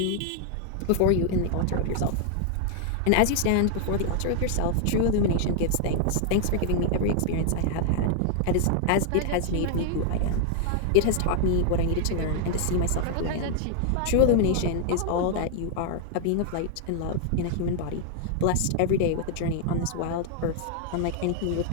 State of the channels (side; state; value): both; different; correlation 0.00